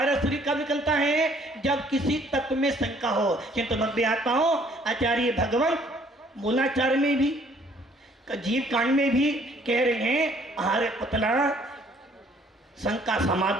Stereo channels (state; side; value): normal; both; correlation 0.60